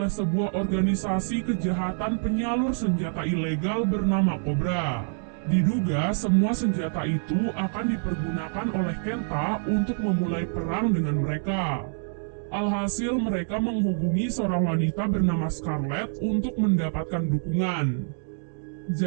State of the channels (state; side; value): silent; left; 61 dB below the other